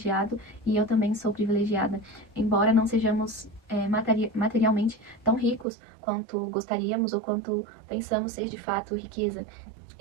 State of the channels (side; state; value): left; drops out; at 5.7 s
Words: e eu também sou privilegiada. Embora não sejamos materialmente tão ricos quanto gostaríamos ou quanto pensamos ser de fato riqueza.